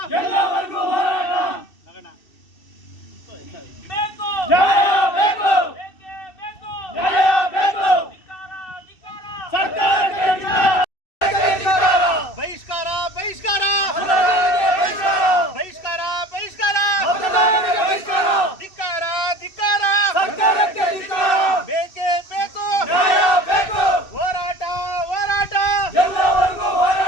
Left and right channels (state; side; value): late; right; 2.6 ms